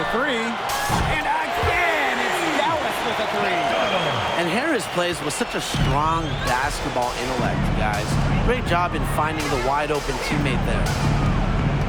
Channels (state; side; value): identical; both; correlation 1.00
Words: 3. And again, it's Dallas with a 3. And Harris plays with such a strong basketball intellect, guys. Great job in finding the wide-open teammate there.